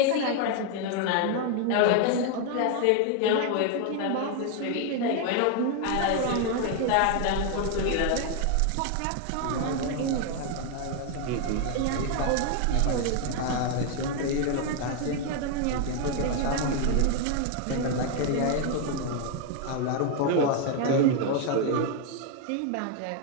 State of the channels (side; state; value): both; different; correlation 0.01